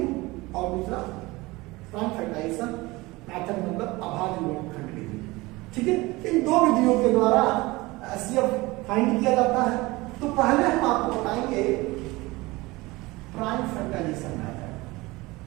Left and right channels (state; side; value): quieter; left; 21.6 dB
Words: और दूसरा प्राइम फैक्टराइजेशन मेथड, मतलब अभाज्य गुणनखंड विधि। ठीक है, इन दो विधियों के द्वारा एचसीएफ फाइंड किया जाता है। तो पहले हम आपको बताएंगे prime factorization method.